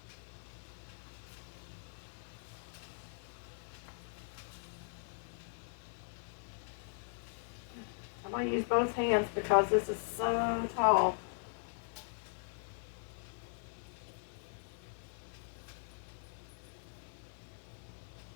I'm going to use both hands because this is so tall.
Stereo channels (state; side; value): silent; right; 51 dB below the other